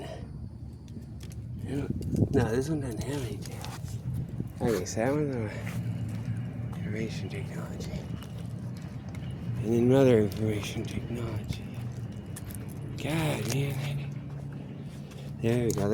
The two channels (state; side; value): identical; both; correlation 1.00